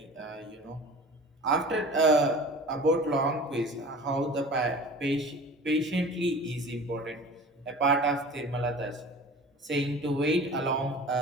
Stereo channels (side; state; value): both; normal; correlation 0.40